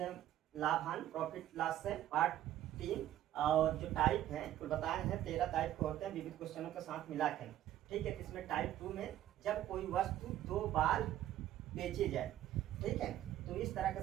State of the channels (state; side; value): quieter; left; 12.7 dB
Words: लाभ हानि प्रॉफिट लॉस से पार्ट 3 और जो टाइप है कुल बताए हैं 13 टाइप के होते हैं विविध क्वेश्चनों के साथ मिला के। ठीक है, इसमें टाइप 2 में जब कोई वस्तु 2 बार बेची जाए, ठीक है, तो इस तरह